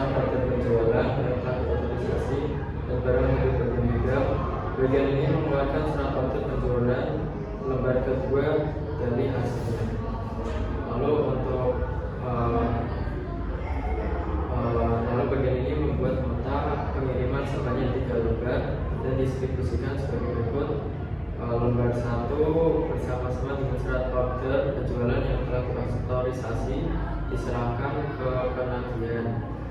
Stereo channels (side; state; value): both; identical; correlation 1.00